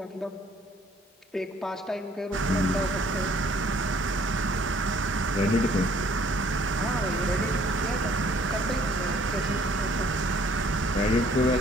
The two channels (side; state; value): both; normal; correlation 0.59